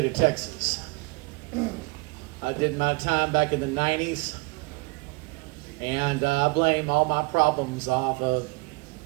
of Texas. I did my time back in the 90s. And I blame all my problems off of,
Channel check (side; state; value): left; quieter; 26.8 dB